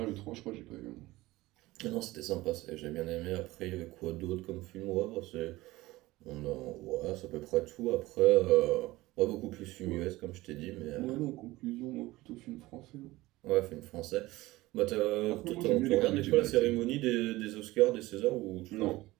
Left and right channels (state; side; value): quieter; left; 19.0 dB